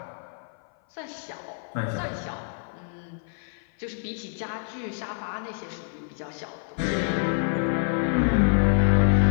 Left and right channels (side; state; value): right; silent; 55 dB below the other